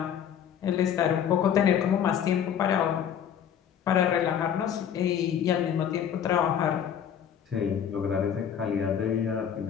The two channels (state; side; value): quieter; right; 8.8 dB